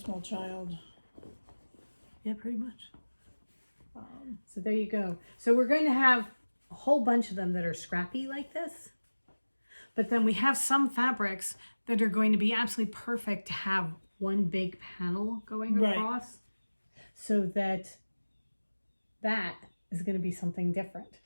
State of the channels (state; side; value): inverted; both; correlation -1.00